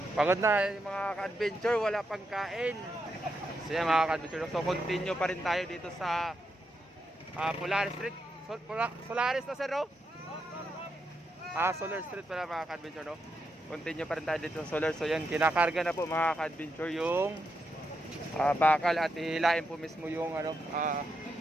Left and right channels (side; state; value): both; normal; correlation 0.83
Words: Pagod na yung mga ka-adventure, wala pang kain. So yan mga ka-adventure, so continue pa rin tayo dito sa Polaris Street. Solaris na sir, no? Solar Street pala mga ka-adventure, no? Continue pa rin tayo dito sa Solar. So yan, kinakarga na po mga ka-adventure yung bakal at hilain po mismo yung ano,